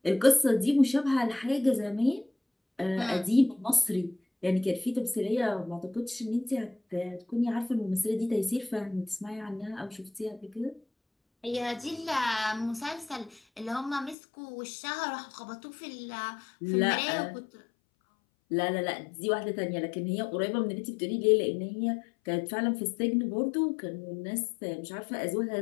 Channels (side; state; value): right; drops out; at 14.2 s